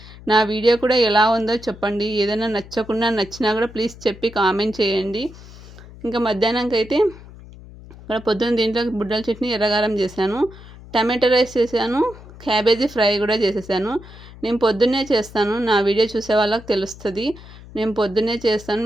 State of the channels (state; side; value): noise; left; hum, 18 dB below the sound